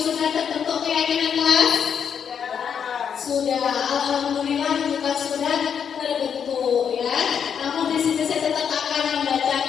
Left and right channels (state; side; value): quieter; right; 7.6 dB